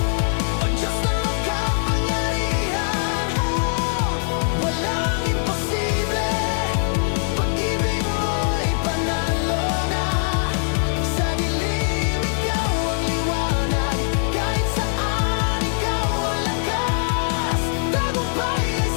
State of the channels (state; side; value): silent; right; digital silence